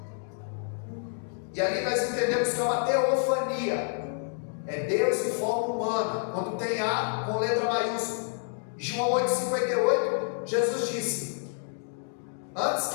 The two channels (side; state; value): right; silent; 59 dB below the other